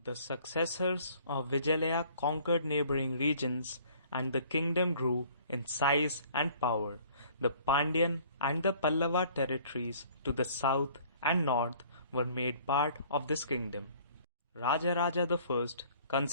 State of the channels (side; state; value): both; inverted; correlation -0.54